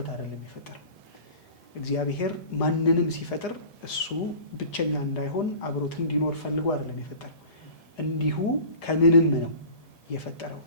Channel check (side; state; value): right; late; 1.7 ms